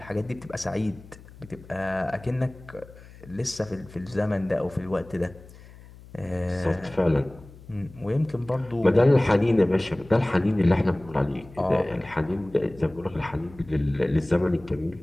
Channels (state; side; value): noise; left; hum, 20 dB below the sound